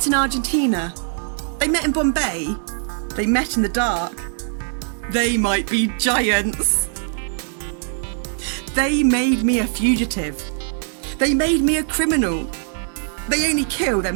in Argentina. They met in Bombay. They met in the dark. They might be giants. They made me a fugitive. They made me a criminal. They only kill their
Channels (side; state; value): left; silent; digital silence